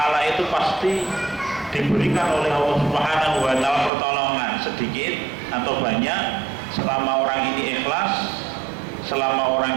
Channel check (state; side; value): drops out; left; at 3.9 s